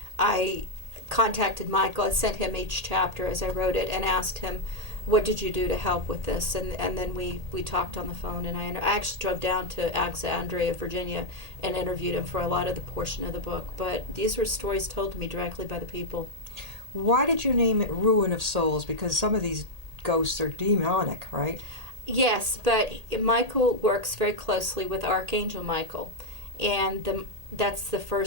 I contacted Michael. I sent him each chapter as I wrote it and asked him, what did you do to help with this? And then we talked on the phone, and I actually drove down to Alexandria, Virginia, and interviewed him for a lot of the portion of the book. But these were stories told to me directly by the people. Why did you name it Ruin of Souls? Because some of these ghosts are demonic, right? Yes, but Michael works very closely with Archangel Michael, and that's the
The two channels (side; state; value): left; late; 1.8 ms